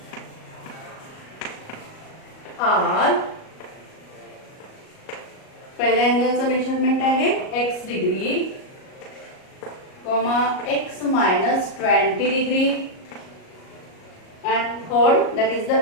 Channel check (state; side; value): late; right; 38 ms